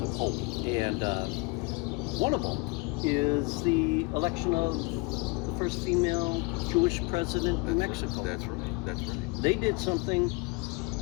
of hope, and one of them is the election of the first female Jewish president in Mexico. That's right. They did something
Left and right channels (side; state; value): right; quieter; 27.2 dB